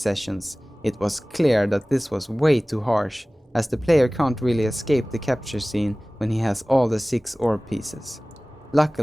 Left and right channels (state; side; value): normal; both; correlation 0.98